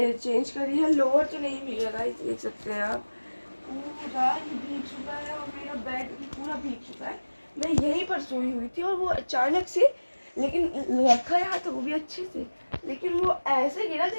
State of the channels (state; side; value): inverted; both; correlation -1.00